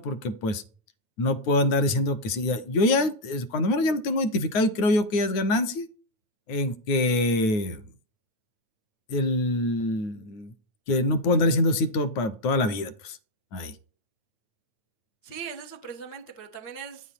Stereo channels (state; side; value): late; right; 9.1 ms